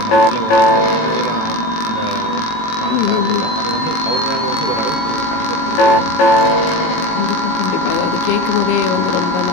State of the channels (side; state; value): right; late; 18 ms